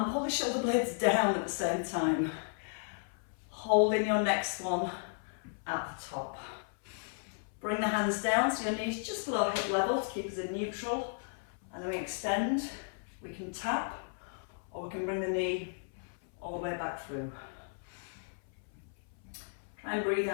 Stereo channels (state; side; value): silent; right; 55 dB below the other